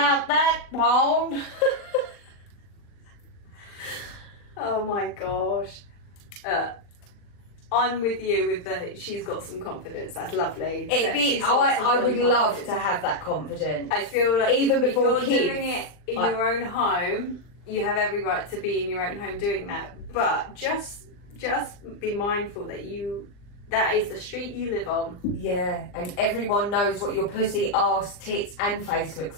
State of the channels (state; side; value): late; right; 40 ms